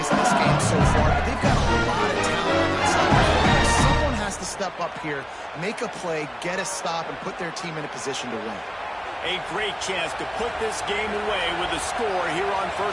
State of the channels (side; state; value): both; identical; correlation 1.00